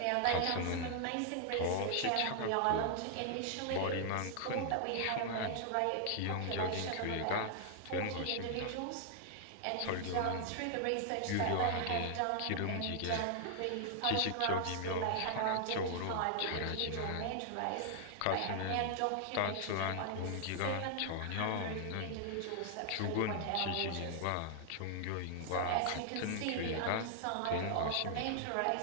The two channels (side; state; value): both; different; correlation 0.00